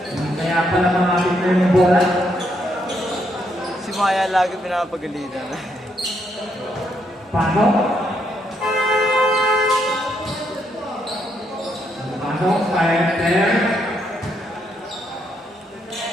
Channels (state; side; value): normal; both; correlation 0.76